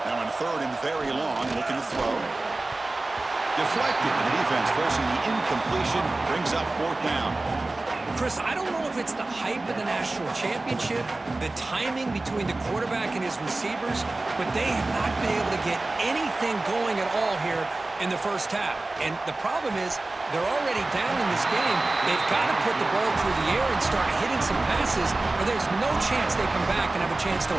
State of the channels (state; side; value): quieter; left; 3.0 dB